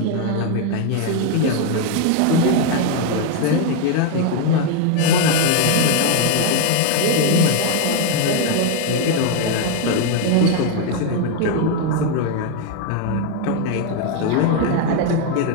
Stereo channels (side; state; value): both; different; correlation 0.01